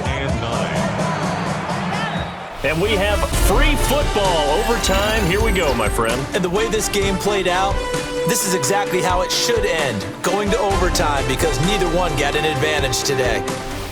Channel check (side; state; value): both; identical; correlation 1.00